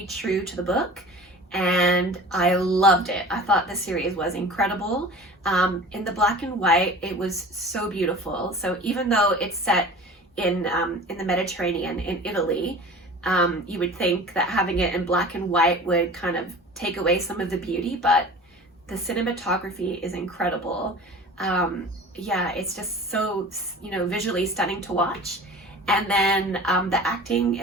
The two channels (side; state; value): both; normal; correlation 0.40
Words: true to the book, and I loved it. I thought the series was incredible. In the black and white, it was so beautiful. So even though it's set in the Mediterranean, in Italy, you would think that having it in black and white would kind of take away some of the beauty, but the cinematography is incredible. Yeah, it's just so, visually stunning to watch. And then the acting